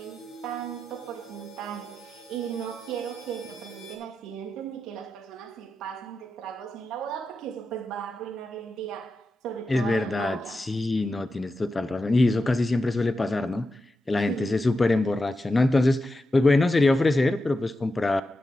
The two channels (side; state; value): both; normal; correlation 0.89